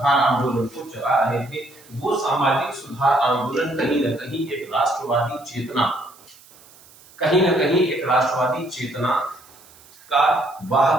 आंदोलन को चला रहे थे, वो सामाजिक सुधार आंदोलन कहीं ना कहीं एक राष्ट्रवादी चेतना, कहीं ना कहीं एक राष्ट्रवादी चेतना का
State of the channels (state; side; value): noise; right; hiss, 25 dB below the sound